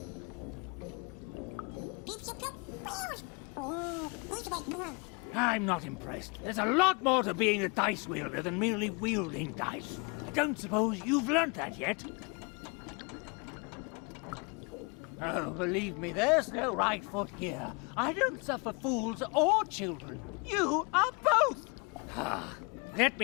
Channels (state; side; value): quieter; right; 32.0 dB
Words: I'm not impressed. There's a lot more to being a dice wielder than merely wielding dice. I don't suppose you've learnt that yet. Oh, believe me, there's no right foot here. I don't suffer fools or children. You are both! Let